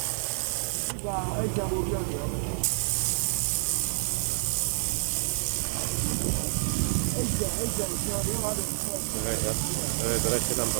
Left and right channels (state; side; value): silent; left; digital silence